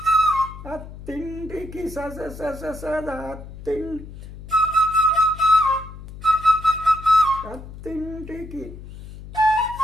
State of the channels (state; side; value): noise; left; hum, 14 dB below the sound